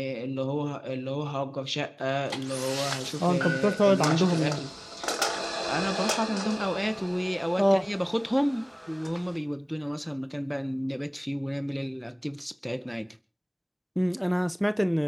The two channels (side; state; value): both; identical; correlation 1.00